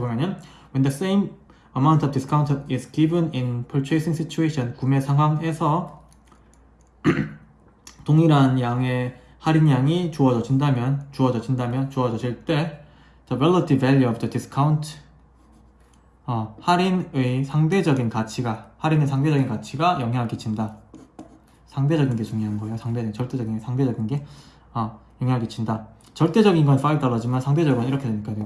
when the same amount of discount is given in purchasing situation, 구매 상황에서 동일한 양의 할인량이 주어질 때 the relative value of the discount, 할인의 상대적인 가치가 영향을 끼친다. 상대적인 게 중요한 거예요. 절대적인 상대적인 게 영향을 끼친다. 절대적인 건 $5지만 상대적인 건 이렇게 되니까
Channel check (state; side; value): identical; both; correlation 1.00